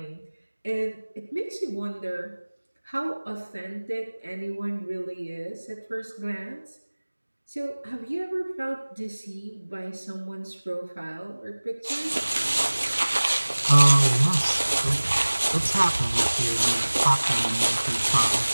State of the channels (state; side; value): inverted; both; correlation -1.00